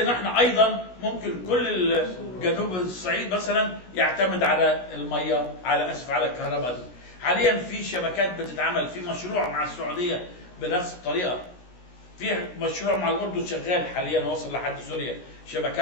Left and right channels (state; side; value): late; right; 16 ms